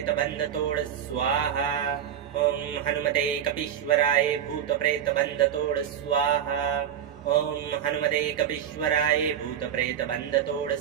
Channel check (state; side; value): quieter; left; 9.4 dB